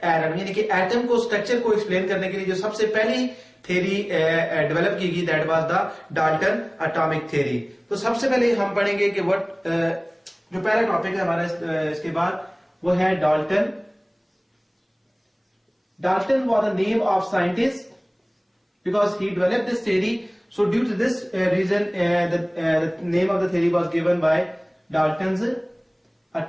यानी कि एटम को स्ट्रक्चर को एक्सप्लेन करने के लिए जो सबसे पहली थ्योरी डेवलप की गई, that was the Dalton atomic theory. तो सबसे पहले हम पढ़ेंगे कि व्हाट जो पहला टॉपिक है हमारा इसके बाद वो है Dalton. Dalton was the name of scientist because he developed this theory. So due to this reason, the name of the theory was given by Dalton's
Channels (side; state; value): both; identical; correlation 1.00